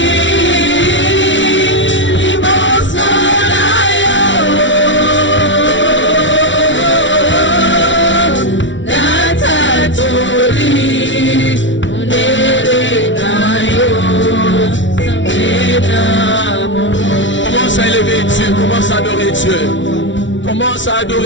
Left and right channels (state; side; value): late; right; 0.55 ms